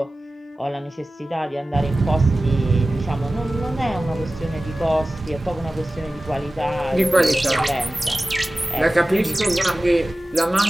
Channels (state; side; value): normal; both; correlation 0.96